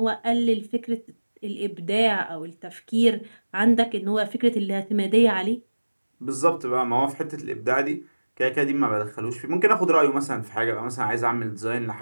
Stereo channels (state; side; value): inverted; both; correlation -1.00